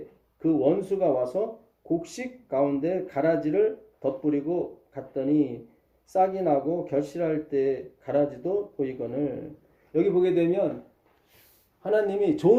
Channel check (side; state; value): both; identical; correlation 1.00